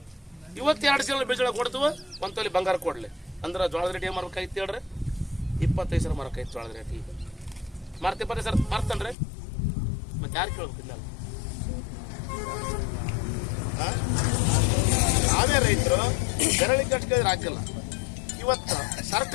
ಇವತ್ತು 2 ಚೀಲ ಬಿಳಿಜೋಳ ಕೊಡ್ತೀವಿ, 1 ತೊಲಿ ಬಂಗಾರ ಕೊಡ್ಲಿ ಅಂದ್ರೆ ಜೋಳದ ರೇಟ್ ಏನು ಮಾರ್ಬೇಕಾಯ್ತು ಹೇಳ್ರಿ? 25 ಸಾವಿರ ಮಾರ್ಕಾಯ್ತು ಜೋಳದ ರೇಟ್. ಈಗ ಮಾರ್ತಿ 25 ಸಾವಿರ ಮಾರ್ತನ್ರಿ, ಮತ್ತೆ ಯಾರು ಕೇಳ್ಬೇಕು? ಇಲ್ಲ ನಾವೇ ರೈತರು ಬೆರಳಿಗೆ ಅಷ್ಟು ಕೇಳಿದ್ರೆ ಆಗಿಲ್ಲ. ಇವತ್ತು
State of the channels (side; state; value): right; drops out; at 9.2 s